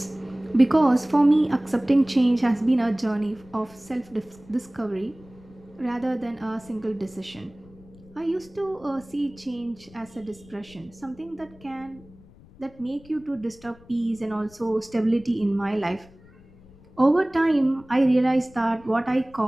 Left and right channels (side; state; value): left; noise; rumble, 24 dB below the sound